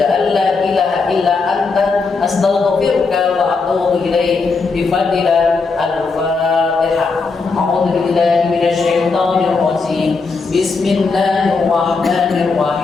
an la ilaha illa anta astaghfiruka wa atubu ilaik. Bi fadlillah al-Fatihah. A'udzu billahi minasy syaithanir rajim.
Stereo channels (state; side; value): quieter; right; 4.4 dB